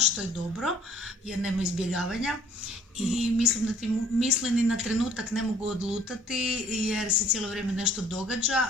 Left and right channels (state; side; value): normal; both; correlation 0.56